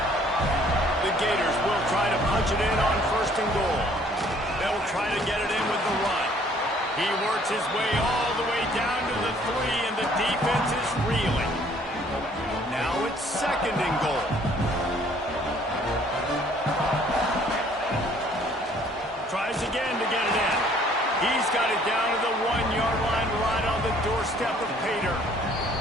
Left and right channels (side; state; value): both; normal; correlation 0.59